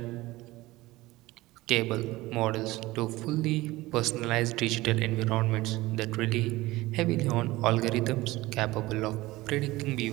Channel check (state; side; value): quieter; left; 19.1 dB